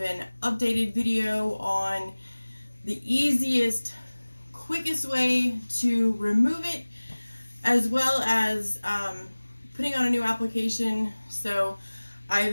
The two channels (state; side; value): inverted; both; correlation -1.00